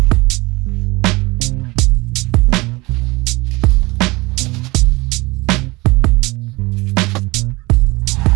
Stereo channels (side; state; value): left; quieter; 23.1 dB